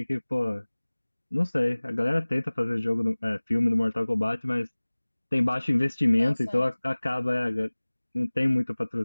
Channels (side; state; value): both; inverted; correlation -1.00